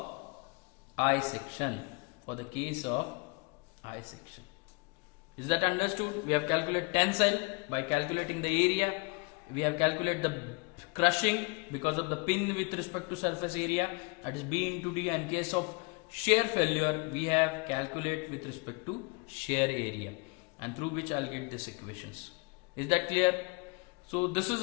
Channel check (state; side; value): quieter; right; 29.8 dB